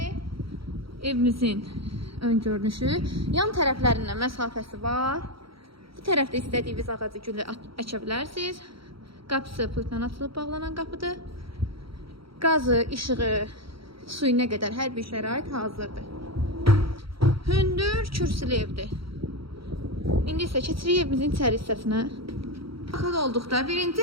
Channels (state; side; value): late; left; 0.75 ms